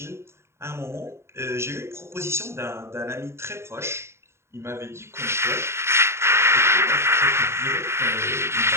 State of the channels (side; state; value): left; late; 0.13 ms